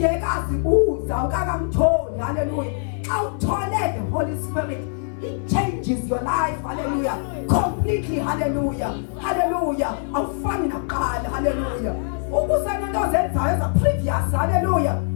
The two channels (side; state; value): right; silent; digital silence